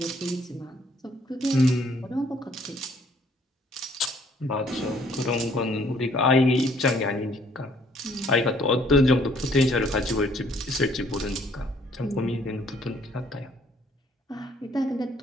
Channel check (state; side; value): normal; both; correlation 0.62